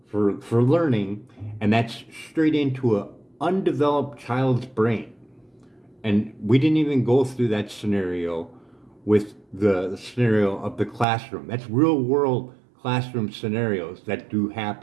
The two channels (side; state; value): left; drops out; at 11.1 s